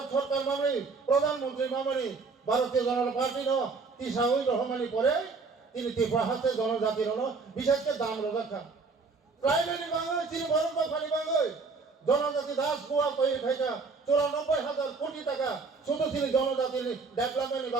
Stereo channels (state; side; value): quieter; left; 4.4 dB